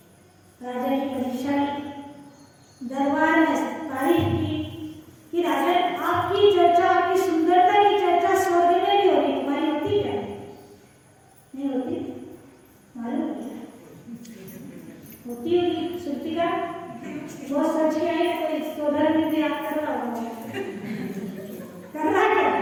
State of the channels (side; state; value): both; identical; correlation 1.00